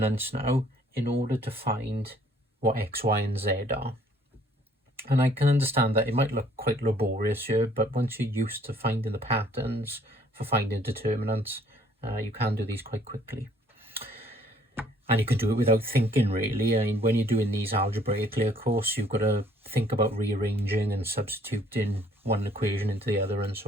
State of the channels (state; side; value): normal; both; correlation 0.61